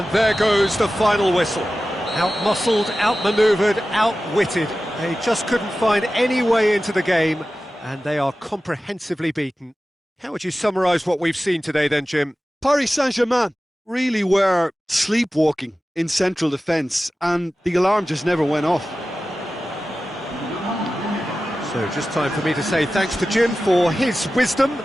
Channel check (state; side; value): normal; both; correlation 0.95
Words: there goes the final whistle. Out-muscled, out-manoeuvred, out-witted. They just couldn't find any way into the game, and they are comprehensively beaten. How would you summarise what we've seen today then, Jim? Paris Saint-Germain really were sleepwalking in central defence, and the alarm just never went off. So just time for me to say thanks to Jim for his wisdom